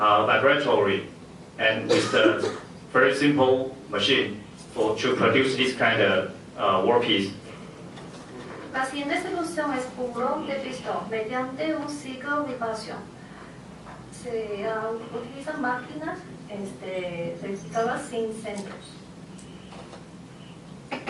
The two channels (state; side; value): identical; both; correlation 1.00